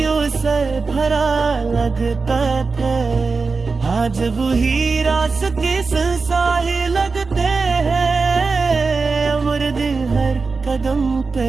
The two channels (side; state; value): left; quieter; 4.3 dB